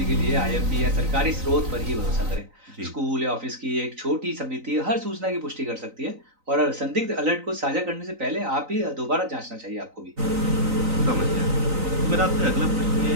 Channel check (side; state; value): left; late; 3.9 ms